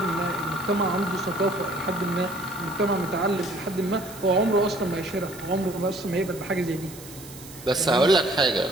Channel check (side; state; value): right; noise; hiss, 17 dB below the sound